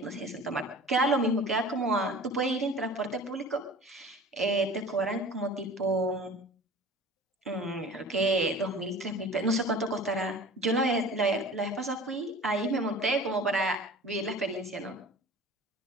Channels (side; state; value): both; normal; correlation 0.41